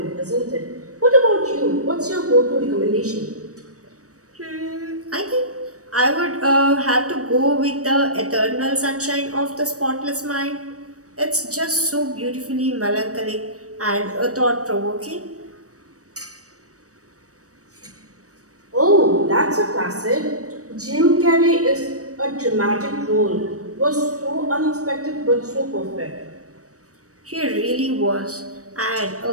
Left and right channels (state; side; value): late; left; 0.66 ms